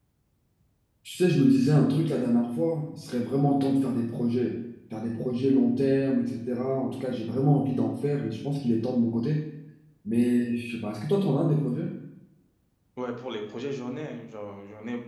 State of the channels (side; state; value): both; identical; correlation 1.00